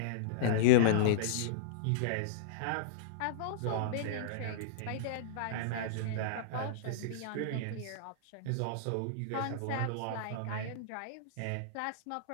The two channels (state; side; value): different; both; correlation -0.03